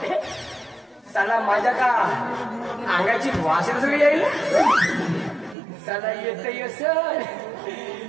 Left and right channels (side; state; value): left; drops out; at 5.6 s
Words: साला माझ्या का अंगाची वास सगळी येईल, साला येत सर,